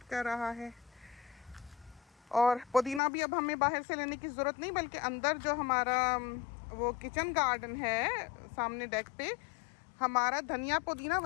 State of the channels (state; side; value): drops out; right; at 3.0 s